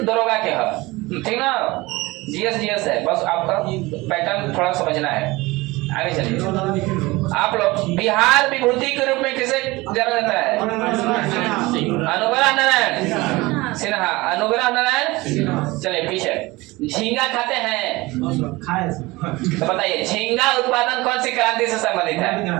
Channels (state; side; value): quieter; left; 21.5 dB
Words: दरोगा के है, ठीक ना। जीएस है, बस आपका पैटर्न थोड़ा समझना है। आगे चलिए। आप लोग बिहार विभूति के रूप में किसे जाना जाता है? अनुग्रह नारायण सिन्हा। अनुग्रह नारायण। चलिए पीछे। झींगा खाते हैं तो बताइए, झींगा उत्पादन कौन सी क्रांति से संबंधित